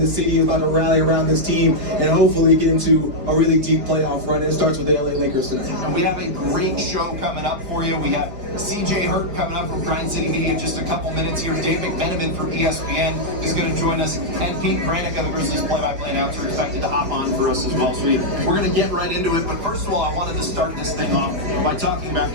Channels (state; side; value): late; left; 4.9 ms